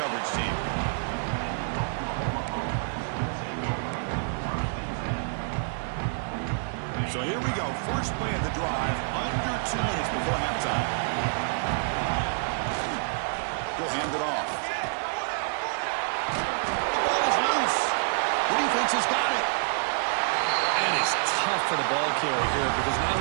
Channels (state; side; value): silent; left; digital silence